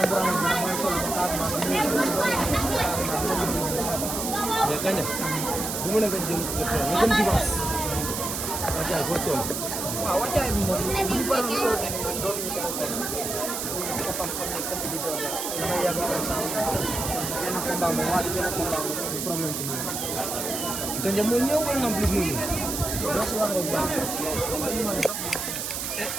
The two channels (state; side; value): noise; right; hiss, 3 dB below the sound